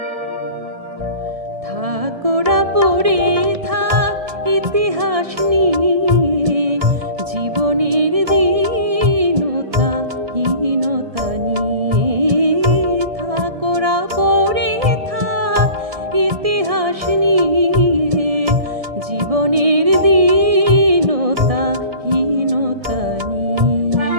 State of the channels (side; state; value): left; late; 1.7 ms